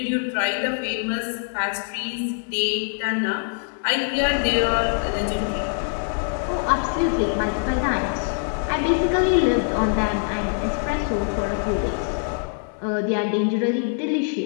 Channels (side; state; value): right; silent; 59 dB below the other